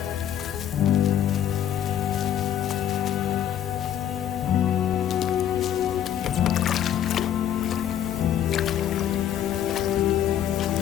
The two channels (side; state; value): right; quieter; 10.3 dB